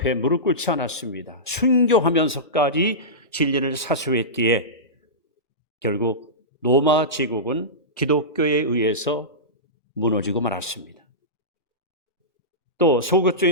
무릎 꿇지 않았습니다. 순교하면서까지 진리를 사수했기에 결국 로마 제국은 기독교에 의해서 무너지고 말았습니다. 또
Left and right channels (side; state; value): both; normal; correlation -0.17